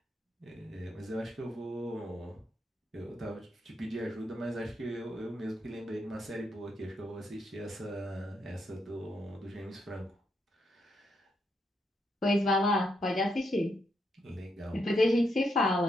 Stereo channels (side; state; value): both; normal; correlation 0.79